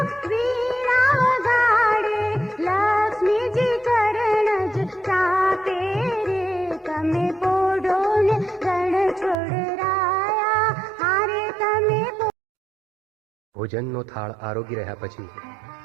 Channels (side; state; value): left; drops out; at 9.3 s